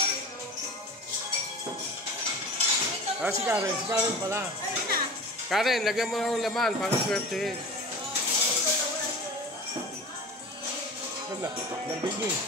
Si Karen pala. Karen, lagyan mo ng laman para swertehin. Wala, nabigay.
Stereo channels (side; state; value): both; normal; correlation 0.35